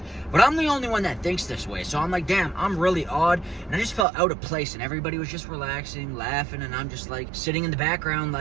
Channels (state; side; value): drops out; left; at 4.0 s